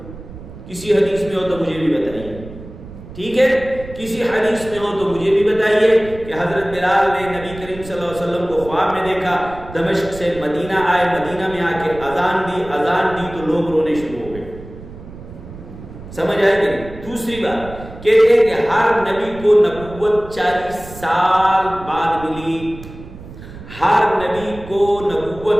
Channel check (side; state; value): right; noise; rumble, 15 dB below the sound